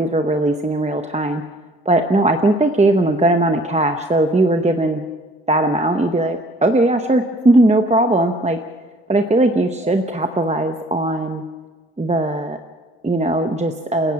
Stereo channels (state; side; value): normal; both; correlation 0.55